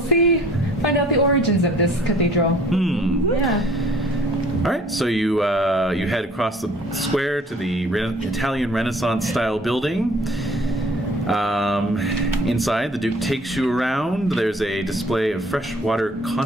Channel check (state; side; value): normal; both; correlation 0.53